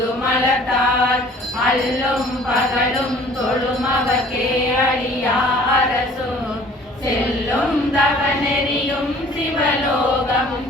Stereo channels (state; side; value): normal; both; correlation 0.52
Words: அல்லும் பகலும் தொழும் அவக்கே அடியா அரசும் செல்லும் தவநெறியும் சிவலோகமும்